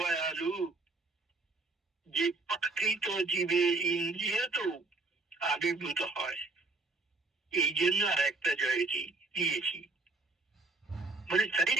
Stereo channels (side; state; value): left; quieter; 3.4 dB